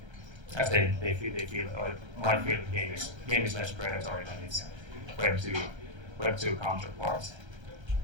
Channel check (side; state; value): left; late; 1.3 ms